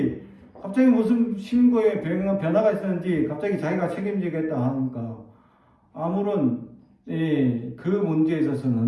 갑자기 무슨 신고에 변화가 있었는지 갑자기 자기가 책임지겠다 하니까 아무런 그 문제에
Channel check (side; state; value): both; identical; correlation 1.00